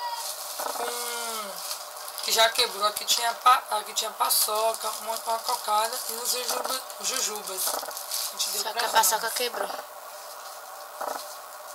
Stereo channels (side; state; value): both; identical; correlation 1.00